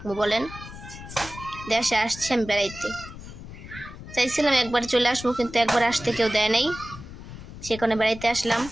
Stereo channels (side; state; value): left; noise; rumble, 13 dB below the sound